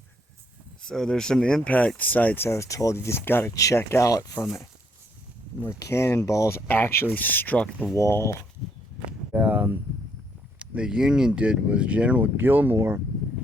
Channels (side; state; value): both; normal; correlation 0.70